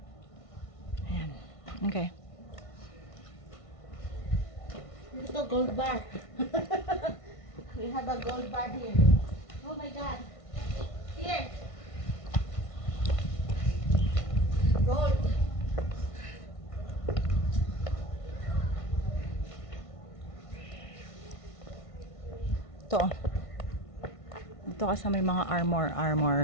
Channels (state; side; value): late; right; 1.5 ms